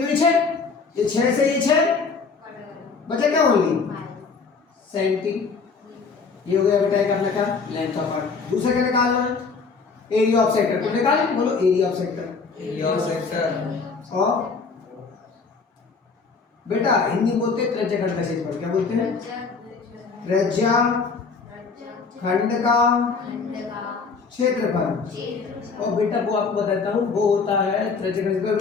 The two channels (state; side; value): quieter; right; 4.8 dB